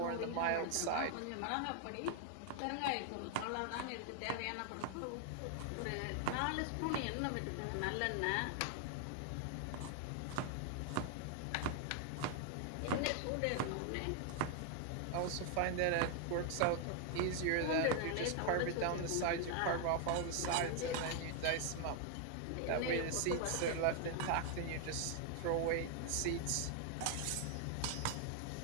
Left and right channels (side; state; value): both; different; correlation 0.00